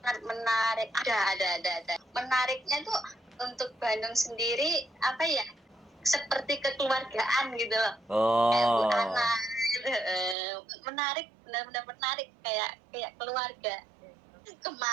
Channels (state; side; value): drops out; left; at 10.4 s